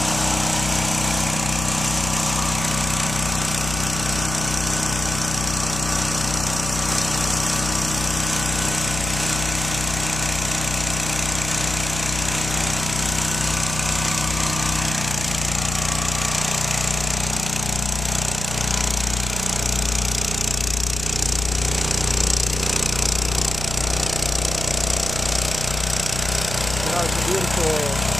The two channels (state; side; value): noise; left; hum, 5 dB below the sound